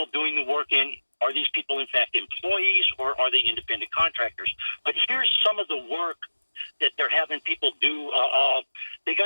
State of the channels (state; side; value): inverted; both; correlation -1.00